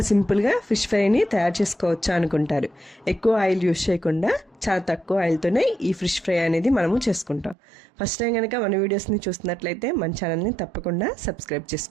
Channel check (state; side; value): drops out; left; at 7.6 s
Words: సింపుల్గా ఫిష్ ఫ్రైని తయారు చేసుకోవచ్చా అనుకుంటారు. ఎక్కువ ఆయిల్ యూజ్ చేయకుండా చాలా తక్కువ ఆయిల్తోనే ఈ ఫిష్ ఫ్రై అనేది మనము చేసుకుంటాం. ఫస్ట్ టైం కనుక మన వీడియోస్ని చూస్తున్నట్లయితే మన ఛానల్ని తప్పకుండా సబ్స్క్రైబ్